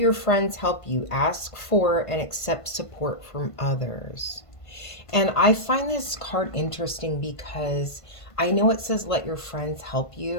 friends help you. Ask for and accept support from others. And I find this card interesting because I know it says let your friends help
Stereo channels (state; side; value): late; right; 1.5 ms